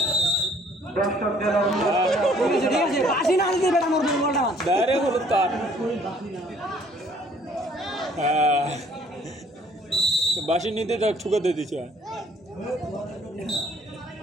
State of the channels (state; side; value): normal; both; correlation 0.59